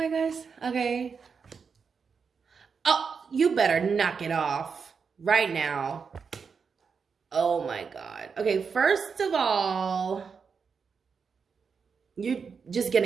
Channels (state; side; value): quieter; left; 5.8 dB